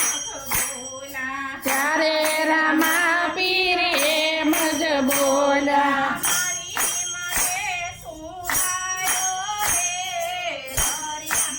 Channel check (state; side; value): identical; both; correlation 1.00